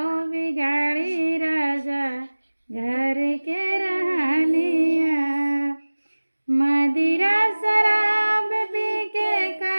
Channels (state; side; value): inverted; both; correlation -1.00